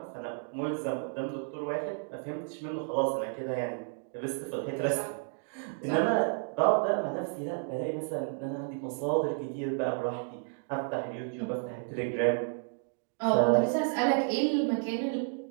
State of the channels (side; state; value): left; silent; 56 dB below the other